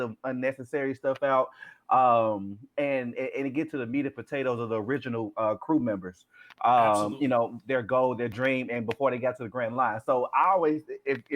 unnecessary stuff out, and it get to the meat and potatoes of the original crew members. Absolutely. Their goal, their dream, and before they got to the Grand Line. So I always,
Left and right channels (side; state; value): both; identical; correlation 1.00